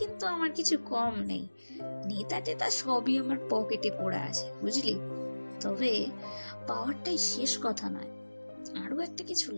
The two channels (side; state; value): both; inverted; correlation -1.00